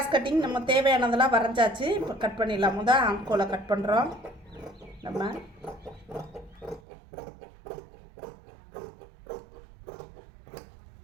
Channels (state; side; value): drops out; left; at 6.8 s